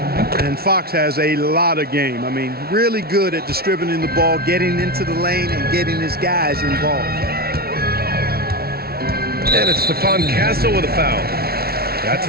1. And Fox has a lot of game. I mean, really good at distributing the ball, getting into the lane, and getting his guys involved. And it's Stephon Castle with a foul. That's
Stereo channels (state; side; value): late; left; 0.45 ms